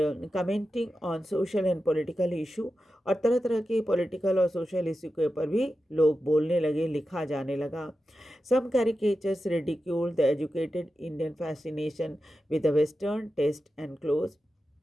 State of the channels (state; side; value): normal; both; correlation 0.91